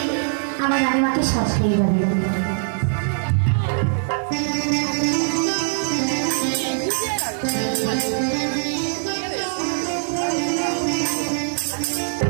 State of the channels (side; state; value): left; silent; digital silence